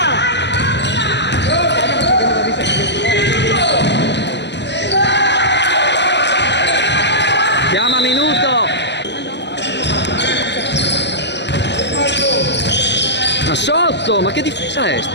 Chiama minuto. Ma sotto, ma che difesa è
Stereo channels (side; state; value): right; late; 0.51 ms